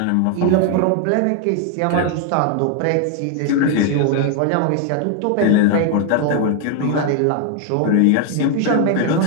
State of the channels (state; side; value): different; both; correlation 0.00